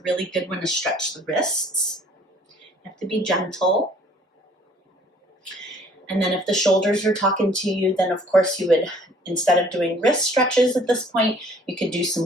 really good one to stretch the wrists. You have to be gentle. And then if the shoulders are talking to you, then of course you would Instead of doing wrist stretches at this point, you could do some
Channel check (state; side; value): normal; both; correlation 0.57